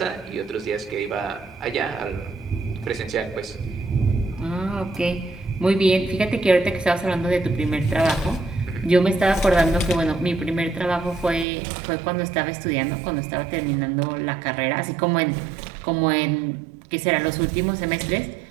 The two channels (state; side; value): drops out; left; at 11.5 s